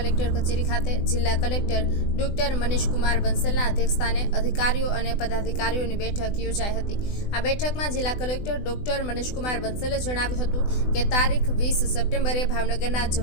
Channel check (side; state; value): right; late; 20 ms